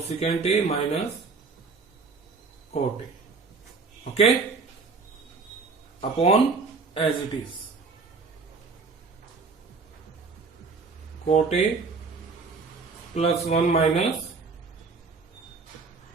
A minus cot A, okay, upon as it is cot A +1 minus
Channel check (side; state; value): left; quieter; 4.4 dB